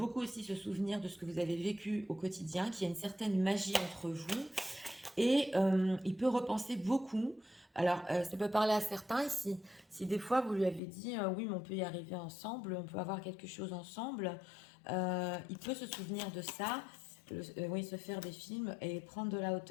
aussi se souvenir de ce que vous avez vécu au quotidien, qu'il y a une certaine magie entre vous, et il peut repenser beaucoup. Alors, ça peut parler à certains ici. Si des fois vous lui avez dit, oui, mais on peut y arriver ensemble, on peut avoir quelque chose ensemble, il peut se souvenir de ça, oui, se faire des films et prendre de la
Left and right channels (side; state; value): right; drops out; at 10.8 s